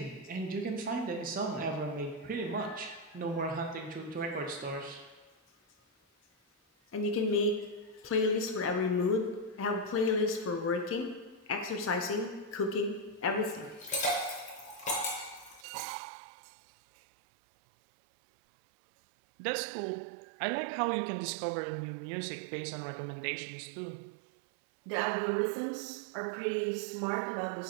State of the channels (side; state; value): left; drops out; at 15.7 s